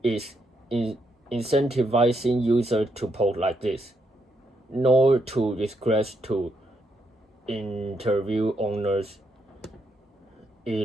is incentivizing users to post like this, nor to request to interview owners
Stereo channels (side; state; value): both; normal; correlation 0.78